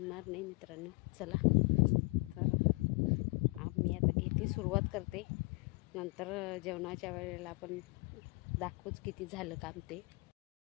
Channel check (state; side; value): quieter; right; 27.5 dB